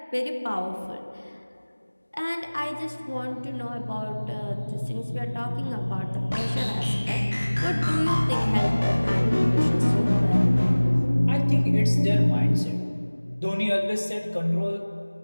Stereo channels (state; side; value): inverted; both; correlation -1.00